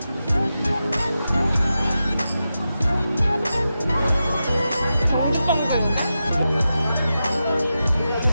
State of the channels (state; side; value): inverted; both; correlation -0.90